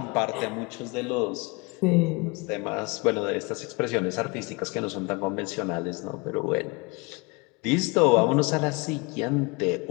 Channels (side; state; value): right; quieter; 27.4 dB